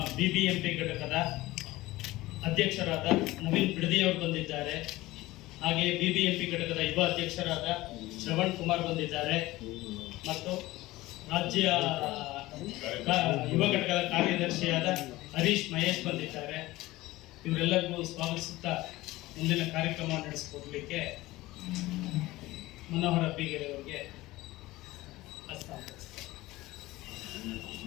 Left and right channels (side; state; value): right; quieter; 18.5 dB